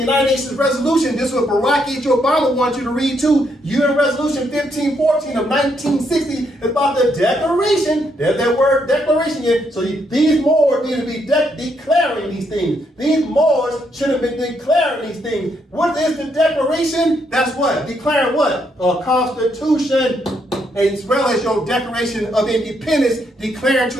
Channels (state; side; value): normal; both; correlation 0.75